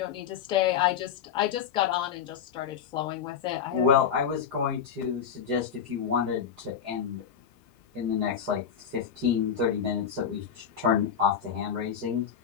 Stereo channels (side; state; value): right; quieter; 7.9 dB